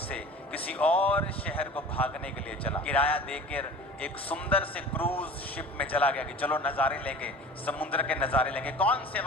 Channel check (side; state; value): both; normal; correlation 0.40